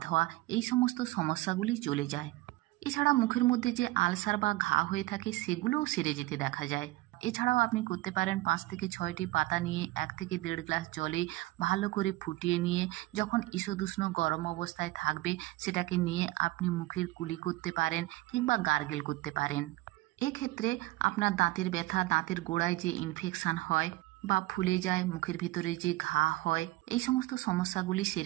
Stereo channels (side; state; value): left; quieter; 19.1 dB